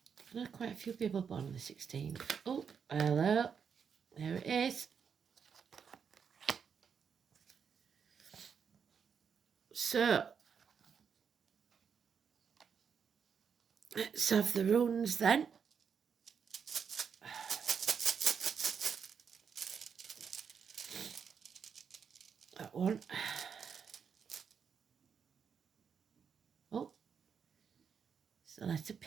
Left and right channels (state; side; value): quieter; left; 6.8 dB